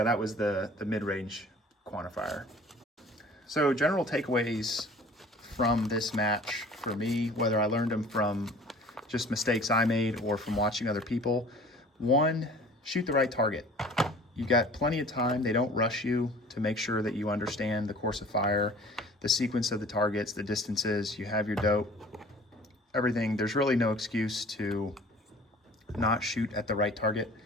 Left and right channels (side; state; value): both; normal; correlation 0.47